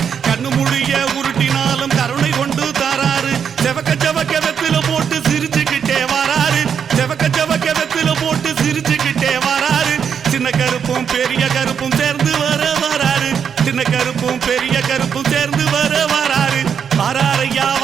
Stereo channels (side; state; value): left; quieter; 7.5 dB